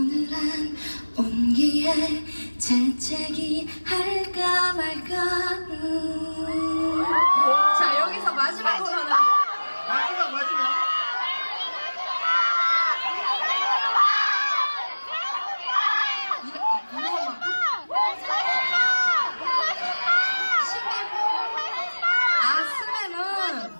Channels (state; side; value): inverted; both; correlation -1.00